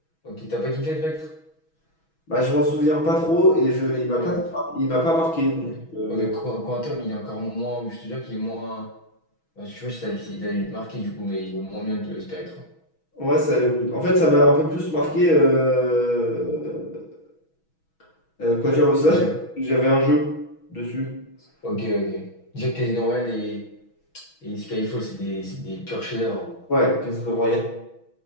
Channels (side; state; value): right; late; 6.2 ms